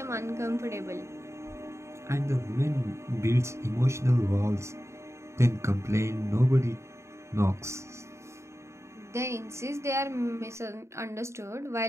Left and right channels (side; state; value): left; late; 0.14 ms